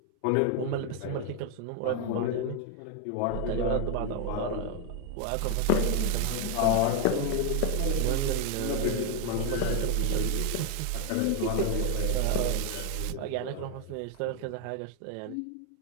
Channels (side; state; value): both; different; correlation 0.01